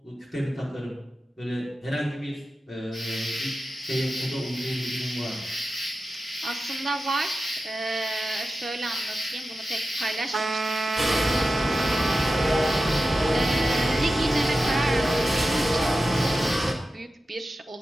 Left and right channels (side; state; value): both; normal; correlation 0.92